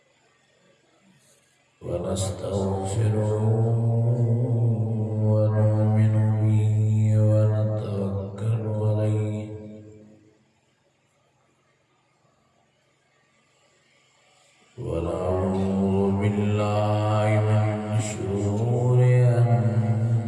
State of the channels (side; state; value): both; identical; correlation 1.00